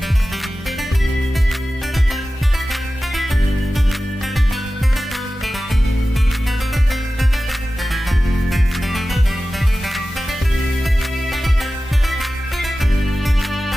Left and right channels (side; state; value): both; normal; correlation 0.95